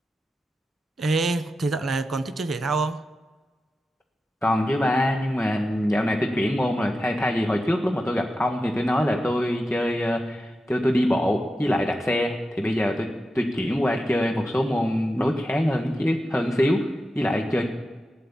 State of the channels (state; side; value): normal; both; correlation 0.91